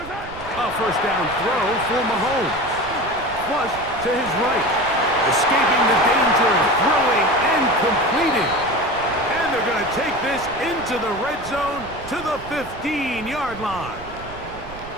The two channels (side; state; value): right; noise; rumble, 16 dB below the sound